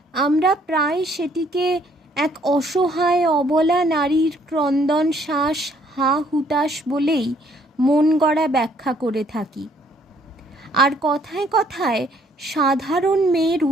আমরা প্রায় সেটিকে এক অসহায় অবলা নারীর ক্রন্দন শ্বাস হা হুতাশ বলেই মন গড়া ব্যাখ্যা করে থাকি। আর কথায় কথায় সাধারণ মেয়ের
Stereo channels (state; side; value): normal; both; correlation 0.64